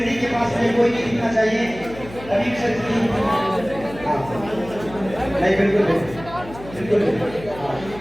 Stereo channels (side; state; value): left; noise; hum, 16 dB below the sound